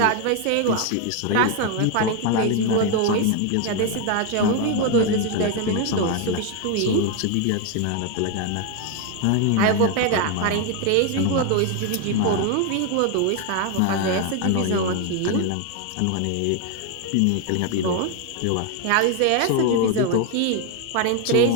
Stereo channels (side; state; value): both; different; correlation 0.01